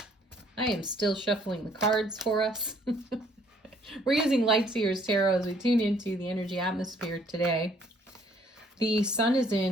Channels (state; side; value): normal; both; correlation 0.63